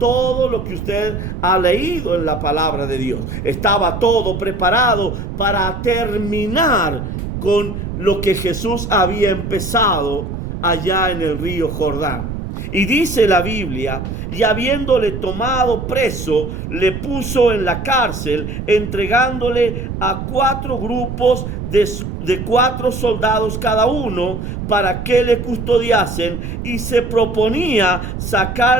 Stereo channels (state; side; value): noise; right; rumble, 6 dB below the sound